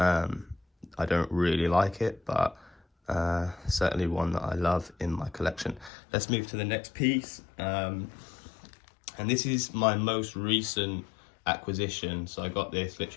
I don't really like it, but certainly one that I love in my collection. Let's move to the next piece. And this is my most recent acquisition. So I got this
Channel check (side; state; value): right; drops out; at 5.9 s